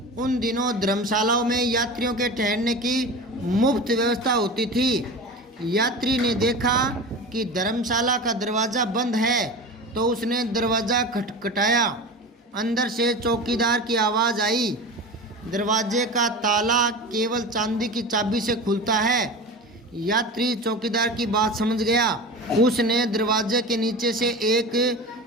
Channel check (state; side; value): normal; both; correlation 0.30